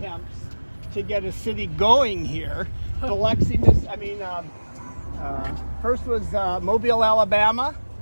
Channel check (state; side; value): inverted; both; correlation -1.00